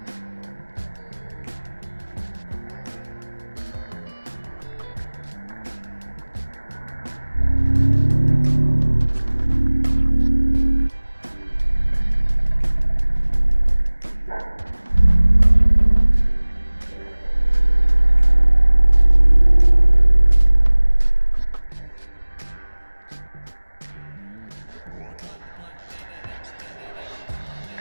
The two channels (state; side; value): inverted; both; correlation -1.00